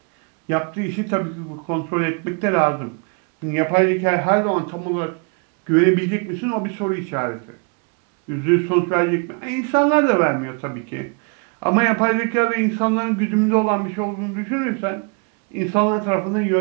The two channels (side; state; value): left; quieter; 36.0 dB